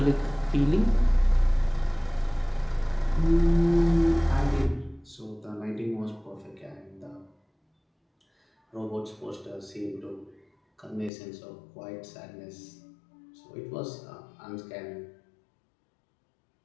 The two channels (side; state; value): right; drops out; at 11.1 s